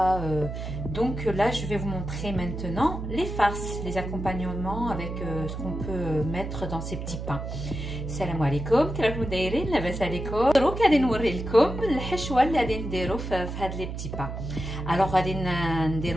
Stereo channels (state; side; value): noise; right; hum, 6 dB below the sound